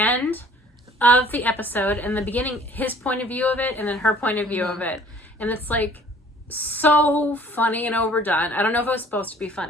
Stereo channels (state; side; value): normal; both; correlation 0.53